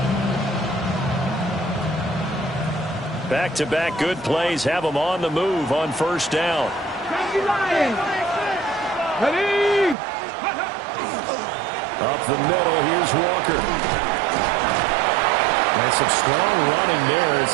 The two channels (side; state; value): left; drops out; at 10.0 s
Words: Back-to-back good plays have them on the move on 1st down. Up the middle, here's Walker. And some strong running there as